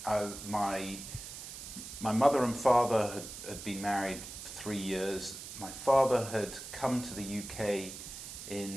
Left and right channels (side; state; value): right; noise; hiss, 10 dB below the sound